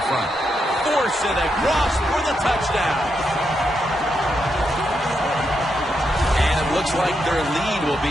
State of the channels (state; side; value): normal; both; correlation 0.82